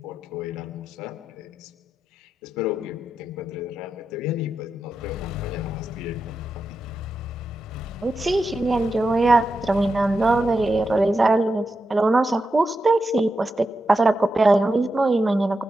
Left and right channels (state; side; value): normal; both; correlation 0.88